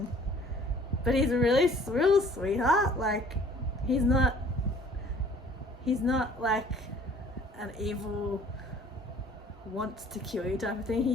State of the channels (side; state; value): both; normal; correlation 0.54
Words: But he's a real sweetheart. Like he's not like an evil, wants to kill you type of thing.